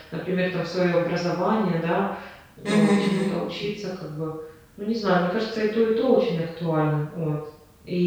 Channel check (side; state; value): both; identical; correlation 1.00